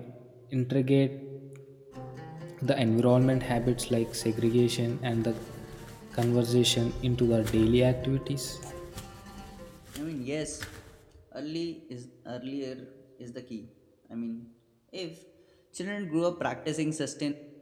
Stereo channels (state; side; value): identical; both; correlation 1.00